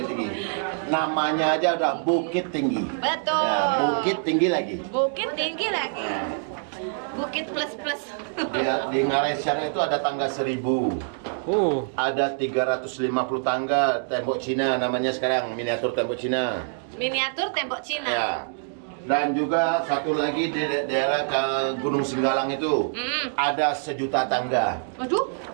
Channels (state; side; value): silent; left; digital silence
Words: Tinggi. Namanya aja udah Bukit Tinggi. Betul. Ya, Bukit Tinggi lagi. Bukit tinggi lagi. Bukit plus. Di Ngarai sana itu ada tangga 1000. Ada 350 tangga tembok Cina namanya sekarang, miniatur tembok Cina. Miniatur tembok Cina. Ya. Dan juga satu lagi di daerah ke Gunung Singgalang itu ada 1 juta tangga. Waduh.